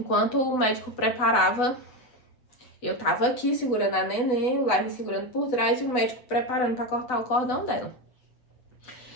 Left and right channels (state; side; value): late; right; 8.0 ms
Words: o médico preparava, eu tava aqui segurando a neném, o Lai me segurando por trás e o médico preparando pra cortar o cordão dela.